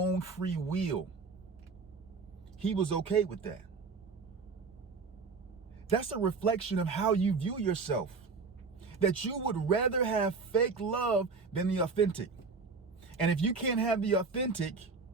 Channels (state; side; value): quieter; left; 4.6 dB